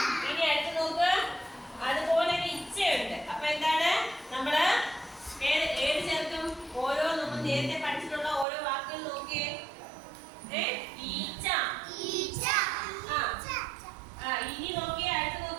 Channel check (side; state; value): left; drops out; at 8.5 s